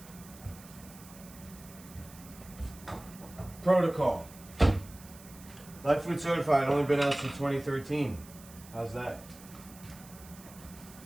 protocol. Lifefood certified, only been out since 2013. How's that?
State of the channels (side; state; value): right; noise; hiss, 20 dB below the sound